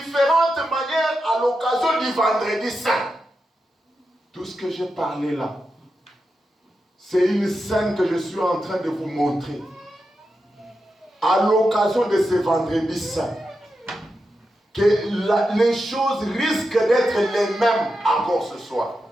manières à l'occasion du vendredi saint. Tout ce que j'ai parlé là, c'est une scène que je suis en train de vous montrer. À l'occasion de ce vendredi saint, que les choses risquent d'être les mêmes encore ce soir.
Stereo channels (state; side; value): normal; both; correlation 0.89